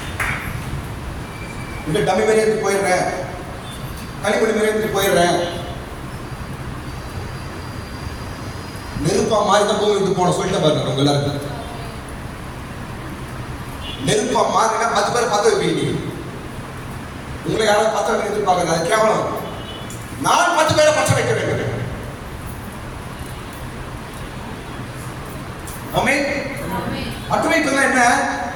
இந்த டம்மி மேலே போயிடுறேன், களிமணி மேலே போயிடுறேன். நெருப்ப நெருப்பா மாறி தான் பூமி விட்டு போன சொல்லிட்டு பாருங்க உங்க எல்லாருக்கும். நெருப்பா மாறினா 10 பேரை பத்த வைப்பீங்க. உங்களை யாராவது பத்த வைக்க எதிர்பார்க்கறது அது கேவலம். நான் 10 பேரை பச்சை வைக்க வேண்டும். ஆமென். பத்த வைப்பதுனா என்ன?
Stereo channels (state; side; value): identical; both; correlation 1.00